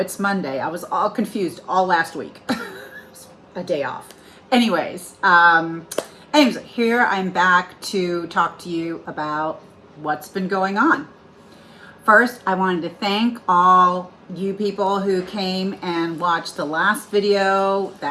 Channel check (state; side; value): identical; both; correlation 1.00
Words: Monday. I was all confused all last week. A day off. Anyways, here I'm back to talk to you about what's been going on. First, I wanted to thank all you people who came and watched the last video.